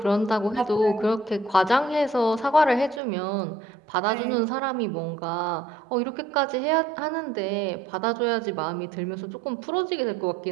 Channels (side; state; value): left; drops out; at 3.0 s